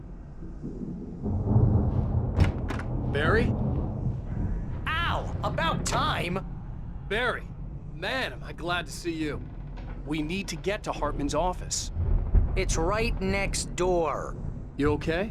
Barry? Ow! About time! Barry! Man, am I glad to see you. We need to get to Hartman's office. It's right next door. You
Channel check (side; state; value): both; identical; correlation 1.00